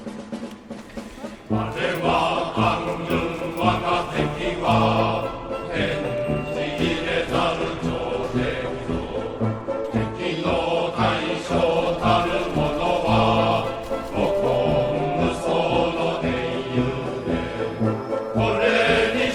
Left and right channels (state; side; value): identical; both; correlation 1.00